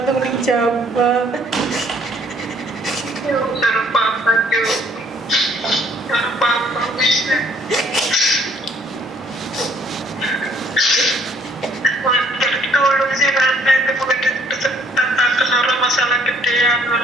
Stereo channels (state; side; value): normal; both; correlation 0.62